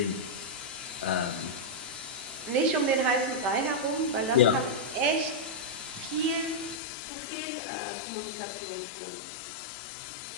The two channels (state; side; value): drops out; right; at 6.8 s